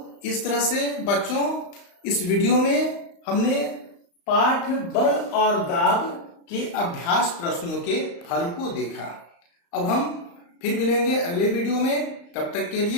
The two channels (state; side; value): late; right; 35 ms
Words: इस तरह से बच्चों, इस वीडियो में हमने पाठ बल और दाब के अभ्यास प्रश्नों के हल को देखा। अब हम फिर मिलेंगे अगले वीडियो में, तब तक के